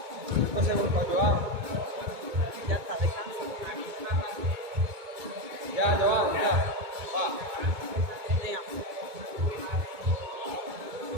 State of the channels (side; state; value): left; late; 2.2 ms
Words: 5 segundos, Joao. Ya está, descansa. Ya, Joao, ya. Va. Venga.